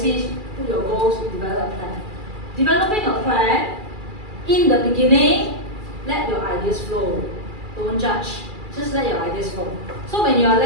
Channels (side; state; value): left; late; 2.3 ms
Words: put your goals, you develop a plan. Developing a plan, in the beginning, let your ideas flow. Don't judge. Just let your ideas flow. So when you are